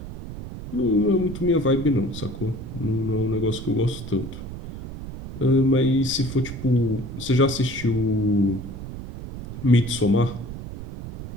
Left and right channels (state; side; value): noise; right; rumble, 10 dB below the sound